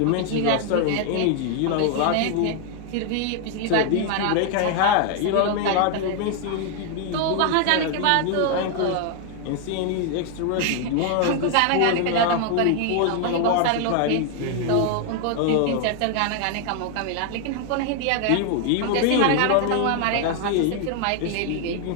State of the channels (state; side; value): different; both; correlation 0.00